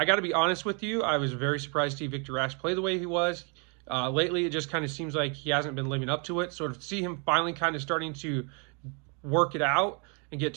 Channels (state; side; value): quieter; left; 35.6 dB